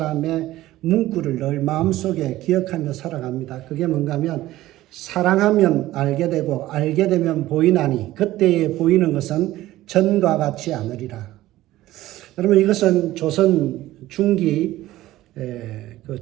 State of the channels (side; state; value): left; quieter; 15.8 dB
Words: 문구를 늘 마음속에 기억하며 살아갑니다. 그게 뭔가 하면 사랑하면 알게 되고 알게 되면 보이나니 그때에 보이는 것은 전과 같지 않으리라. 여러분 이것은 조선 중기 그